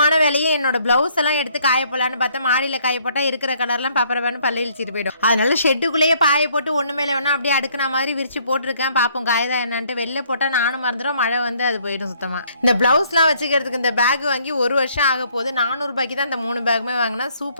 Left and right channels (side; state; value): both; inverted; correlation -0.64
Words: வேலையே என்னோட பிளவுஸ் எல்லாம் எடுத்து காய போடலான்னு பார்த்தா மாடியில காய போட்டா இருக்கிற கலர்லாம் பப்பரவான்னு பல்ல இழிச்சிட்டு போயிடும். அதனால ஷெட்டுக்குள்ளேயே பாய போட்டு ஒண்ணு மேல வேணா அப்படியே அடுக்குன மாதிரி விரிச்சு போட்டிருக்கேன். பாப்போம் காயதான் என்னன்ட்டு. வெளில போட்டா நானும் மறந்துடும், மழை வந்து அது போயிடும் சுத்தமா. இந்த பிளவுஸ் எல்லாம் வச்சுக்கிறதுக்கு இந்த பேக் வாங்கி 1 வருஷம் ஆக போகுது. 400 ரூபாய்க்கு தான் இந்த 3 பேக்குமே வாங்கினா.